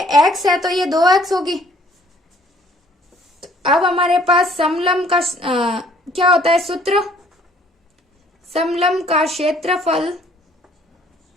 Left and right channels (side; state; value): both; normal; correlation 0.59